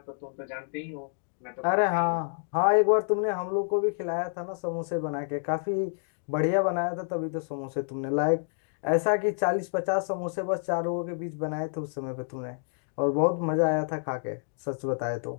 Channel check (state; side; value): silent; right; digital silence